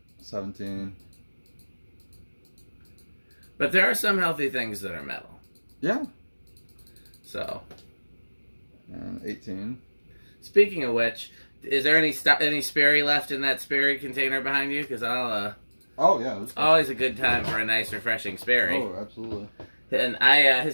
17. But there are some healthy things that are metal. Yeah. So. And 18. Speaking of which, is there any Sperry left in that Sperry container behind you? Because I'll. Oh yeah. It's always a good time for a nice, refreshing Sperry. Oh, absolutely. And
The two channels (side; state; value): both; inverted; correlation -1.00